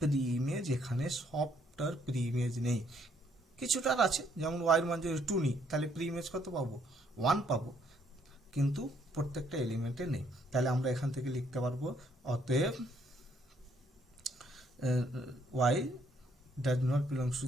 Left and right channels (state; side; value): normal; both; correlation 0.68